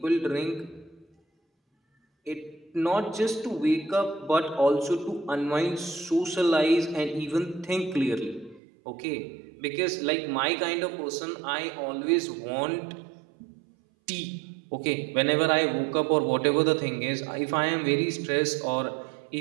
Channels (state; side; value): drops out; left; at 8.6 s